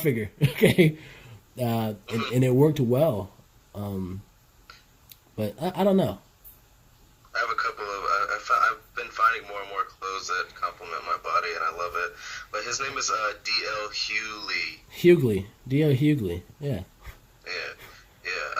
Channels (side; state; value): both; identical; correlation 1.00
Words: okay, and it worked well. But I don't know. I have a couple of. I've been finding more and more clothes that complement my body, and I love it. But his name is D.L. Hughley. D.L. Hughley. Yeah. Yeah.